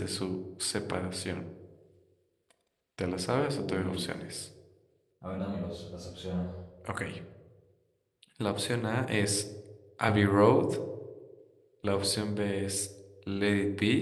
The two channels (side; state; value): both; identical; correlation 1.00